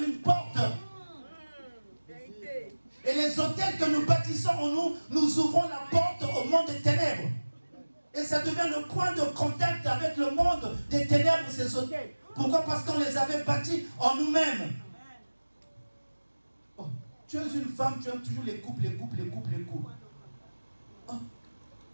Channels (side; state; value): both; inverted; correlation -1.00